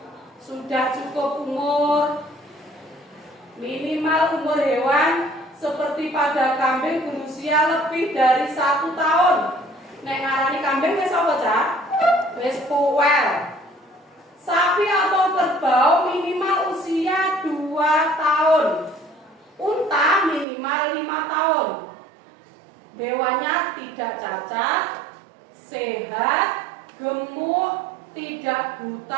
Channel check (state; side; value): drops out; left; at 20.5 s